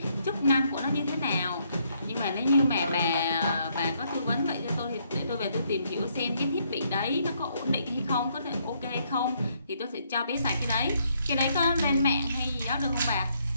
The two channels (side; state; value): both; inverted; correlation -0.72